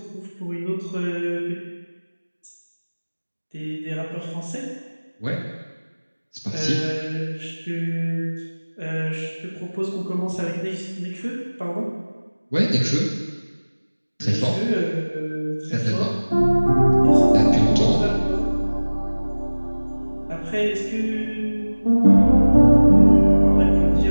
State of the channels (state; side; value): inverted; both; correlation -1.00